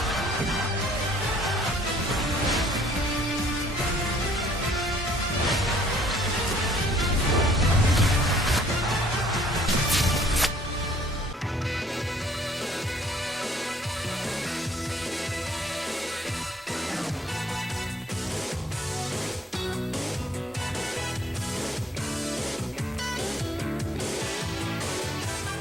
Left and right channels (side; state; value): both; normal; correlation 0.60